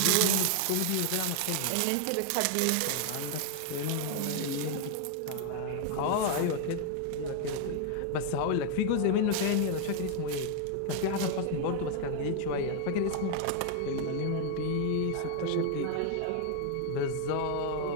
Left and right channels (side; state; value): both; different; correlation 0.00